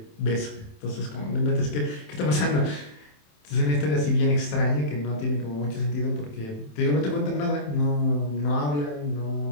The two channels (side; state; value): right; late; 27 ms